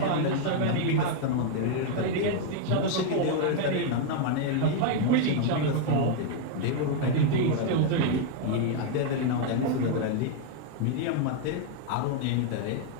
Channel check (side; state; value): both; different; correlation 0.00